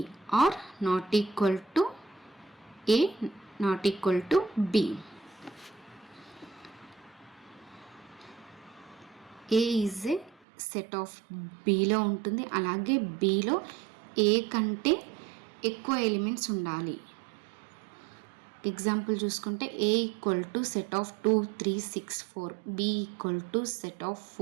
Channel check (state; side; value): drops out; left; at 10.4 s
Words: are not equal to A, not equal to B. A is a set of Bలో ఉంటుంది, అలాగే Bలో A కంటే ఎక్కువ elements ఉండాలి. Example చూసుకుంటే A equal to set of 2 3 6 4, B equal to set of